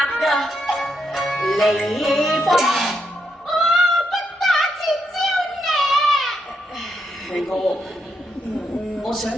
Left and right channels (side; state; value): both; normal; correlation 0.80